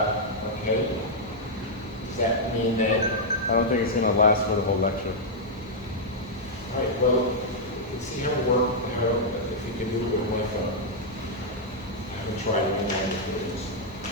Okay. Does that mean that? I don't think it's going to last for the whole lecture. Right. well, you can see how it work, how, if you can do it with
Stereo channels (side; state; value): left; noise; hum, 23 dB below the sound